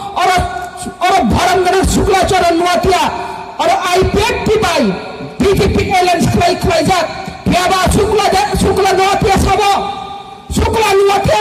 और भरंगन शुक्लाचरण नुआतिया और आईपीएफटी बाई बीजेपी एलायंस खलाई जात फेबा शुक्ला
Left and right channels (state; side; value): identical; both; correlation 1.00